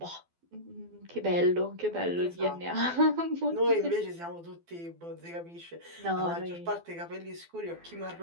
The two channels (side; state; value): left; late; 12 ms